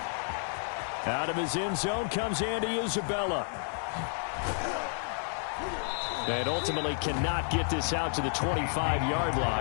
Out of his end zone comes Andy Isabella. And ultimately cannot get this out to the 25-yard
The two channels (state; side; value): silent; right; 57 dB below the other